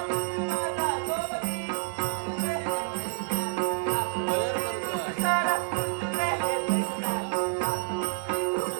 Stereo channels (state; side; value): silent; left; digital silence